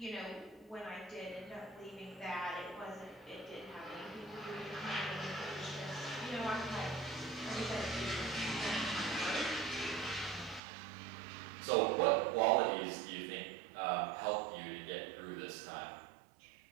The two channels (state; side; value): drops out; left; at 10.6 s